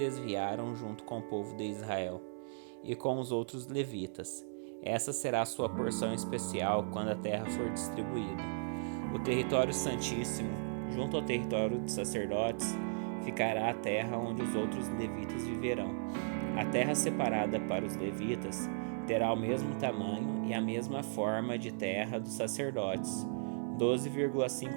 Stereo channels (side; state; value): left; silent; digital silence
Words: junto com o povo de Israel, e com os outros levitas. Essa será a sua porção especial quando a terra for distribuída. O território santíssimo, junto ao território dos sacerdotes, ficará a terra onde os outros levitas viverão. A terra separada para os levitas terá o mesmo tamanho e a mesma forma de terra dos sacerdotes,